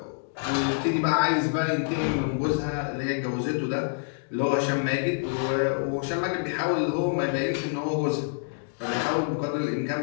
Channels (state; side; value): silent; right; digital silence